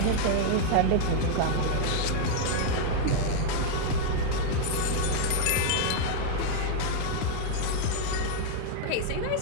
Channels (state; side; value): different; both; correlation 0.00